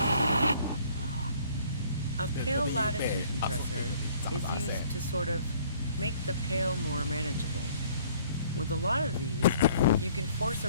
A pale latitude compressor is used to sort of make the pale more manageable. With a lot of these, you can force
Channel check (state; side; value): inverted; both; correlation -0.58